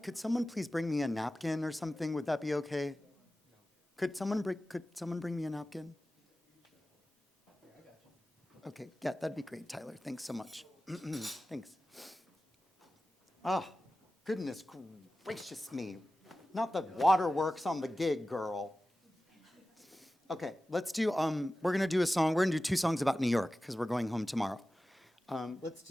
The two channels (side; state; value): both; normal; correlation 0.95